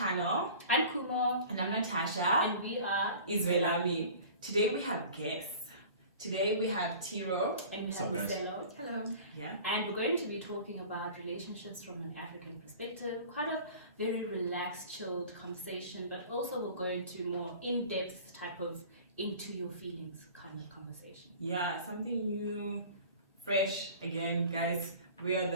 channel. I'm Kumo. And I'm Natasha. And we are Israelami. Today we have guests. Today we have Tiro. And we have Miselo. Hello. Yeah. And we're going to be talking about relationships from an African perspective. Quite a very relaxed, chilled conversation, but also we're going to more in-depth type of into your feelings kind of conversation. Yeah, something new, fresh. Again, guys, we are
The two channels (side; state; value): both; inverted; correlation -0.43